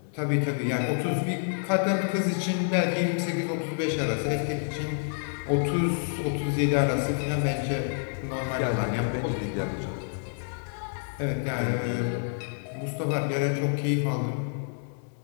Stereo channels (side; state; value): right; silent; digital silence